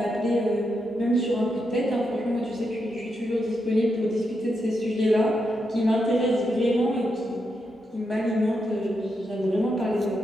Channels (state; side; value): normal; both; correlation 0.84